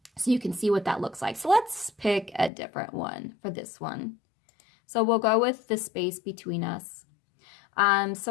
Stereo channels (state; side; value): drops out; right; at 2.5 s